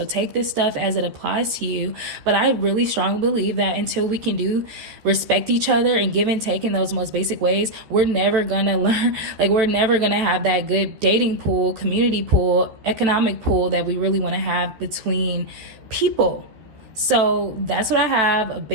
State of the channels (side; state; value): left; late; 13 ms